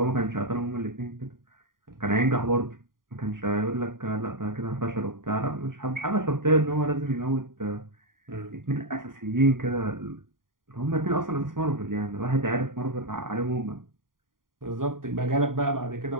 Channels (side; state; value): left; late; 0.91 ms